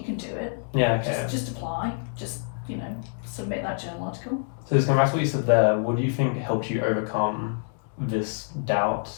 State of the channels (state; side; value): silent; right; digital silence